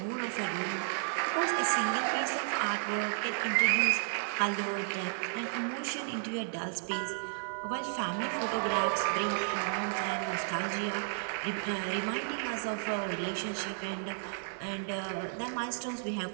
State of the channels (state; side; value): silent; left; 56 dB below the other